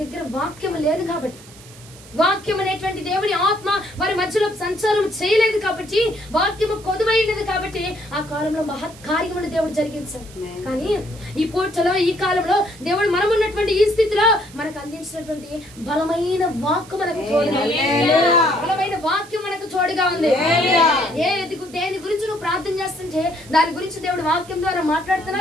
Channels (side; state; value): right; noise; hiss, 21 dB below the sound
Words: దగ్గర వాక్యం లేదు కాబట్టి. వాక్యం అనేటువంటి దేవుని ఆత్మ వారి మధ్యలో సంచారం చేయలేదు కాబట్టి, వాక్యము కొదువైనది కాబట్టి ఆ కాలంలో మహత్ కార్యమును దేవుడు జరిగించాడు. కానీ ఈ పూటలో ఈ కాలంలో దేవుడు మనం ఉన్నటువంటి ఈ స్థితిలో మనకు అందించినటువంటి బలమైన వాక్కు మనకు తోడుగా ఉంది. బలమైన వాక్యం మనకు తోడుగా ఉంది. దేని గురించి నువ్వు ప్రార్థన చేస్తుంటే దాని గురించి దేవుడు వాక్యం ద్వారా